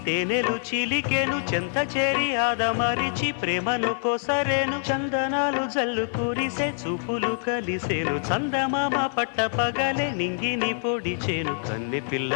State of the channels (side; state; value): right; silent; digital silence